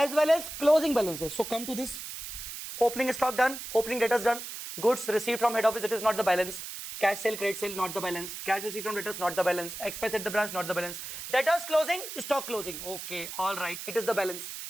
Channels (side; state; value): right; noise; hiss, 9 dB below the sound